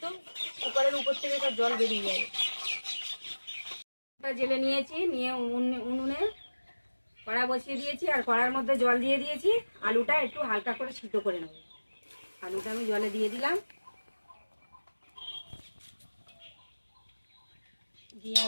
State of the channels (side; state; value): both; inverted; correlation -1.00